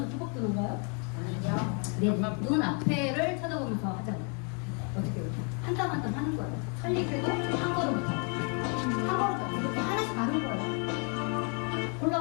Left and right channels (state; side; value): quieter; right; 38.2 dB